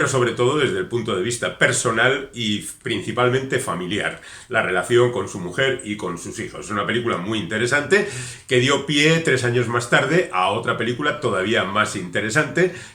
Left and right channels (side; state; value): both; identical; correlation 1.00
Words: sobre todo desde el punto de vista personal y principalmente familiar, la relación con su mujer y con sus hijos. Es una película muy interesante que dio pie 3 años más tarde a otra película todavía más interesante